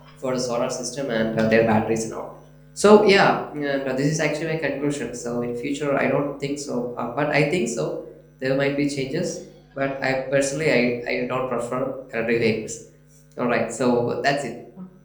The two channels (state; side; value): identical; both; correlation 1.00